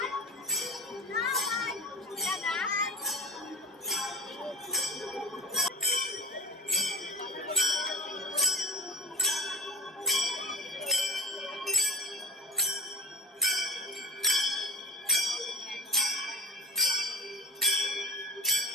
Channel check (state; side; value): normal; both; correlation 0.32